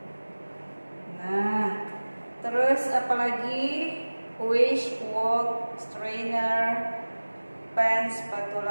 Nah, terus apalagi wish, wok, strainer, pan,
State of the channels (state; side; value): inverted; both; correlation -1.00